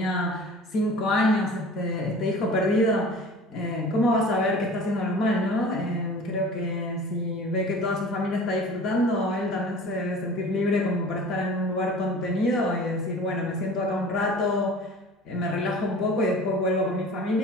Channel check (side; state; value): both; normal; correlation 0.42